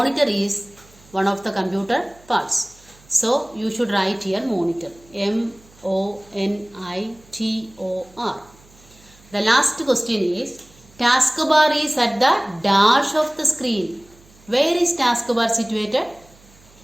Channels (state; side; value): noise; right; hum, 27 dB below the sound